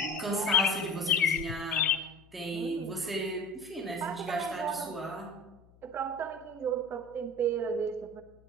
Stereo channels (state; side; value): noise; left; hum, 27 dB below the sound